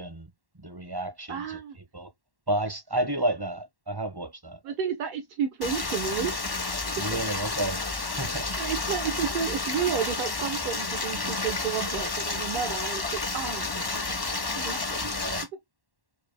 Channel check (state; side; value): late; left; 1.1 ms